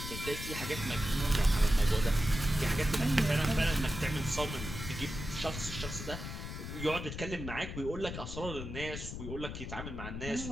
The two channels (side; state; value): left; noise; rumble, 7 dB below the sound